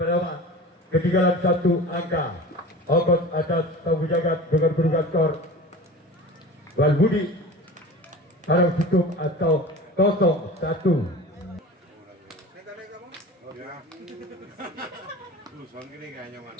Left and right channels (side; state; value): both; normal; correlation 0.36